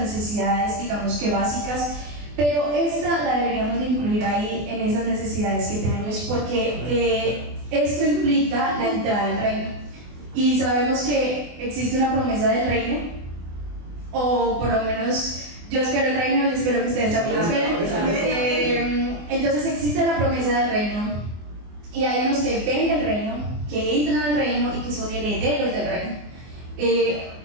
digamos que básicas. Pero esta la deberíamos de incluir ahí en esas necesidades que tenemos, porque esto implica la entrada al reino. Y sabemos que existe una promesa del reino, o por lo menos yo espero el reino y espero que ustedes también lo esperen. Entonces existe la promesa del reino, y hay unos que ven el reino, que entran al reino y que son herederos del reino.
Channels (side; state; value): left; late; 24 ms